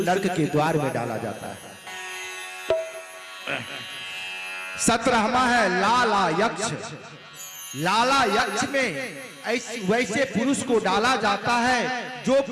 के द्वार में डाला जाता है। 17वां है लाला यक्ष। लाला यक्ष में वैसे पुरुष को डाला जाता है जो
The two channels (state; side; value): identical; both; correlation 1.00